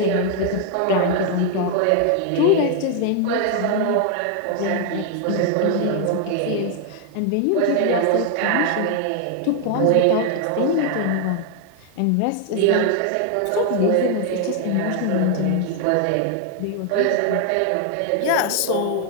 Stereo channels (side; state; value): both; different; correlation 0.00